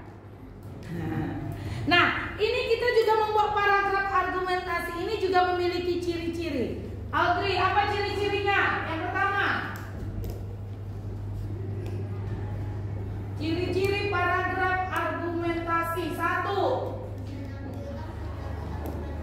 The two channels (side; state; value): both; identical; correlation 1.00